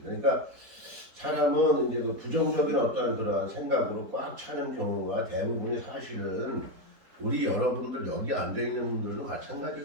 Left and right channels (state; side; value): late; left; 4.2 ms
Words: 그러니까 사람은 이제 그 부정적인 어떤 그러한 생각으로 꽉 차는 경우가 대부분이 사실은 우리 여러분들 여기 앉아 있는 분들도